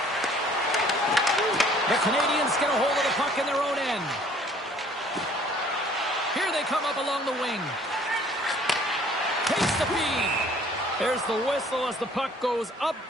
The Canadiens get a hold of the puck in their own end. Here they come up along the wing. Takes the feed. There's the whistle as the puck goes up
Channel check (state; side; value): normal; both; correlation 0.56